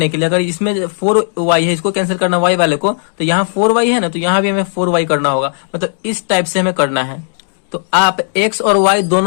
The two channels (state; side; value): silent; right; 70 dB below the other